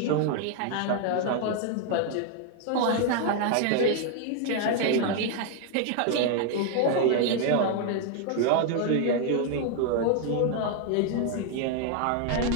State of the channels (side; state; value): both; different; correlation 0.01